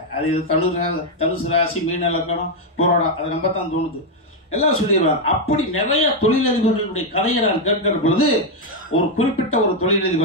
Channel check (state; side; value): normal; both; correlation 0.02